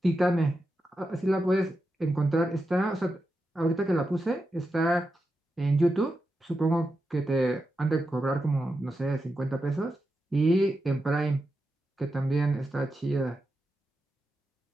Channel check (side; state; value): both; normal; correlation 0.88